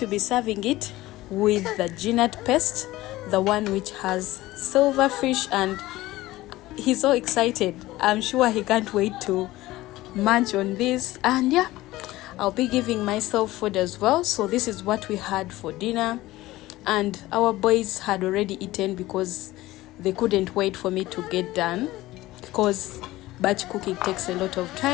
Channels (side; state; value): right; quieter; 17.5 dB